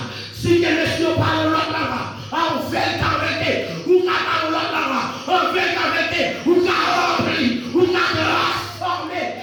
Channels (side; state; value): both; identical; correlation 1.00